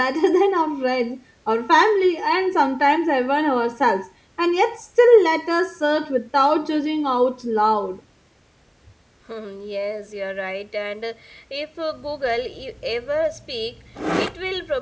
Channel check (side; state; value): both; identical; correlation 1.00